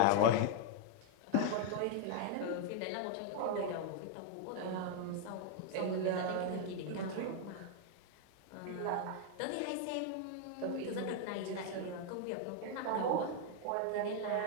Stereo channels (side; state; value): both; different; correlation 0.00